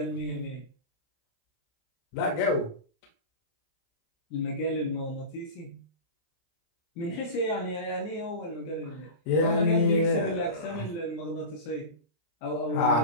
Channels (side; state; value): right; late; 23 ms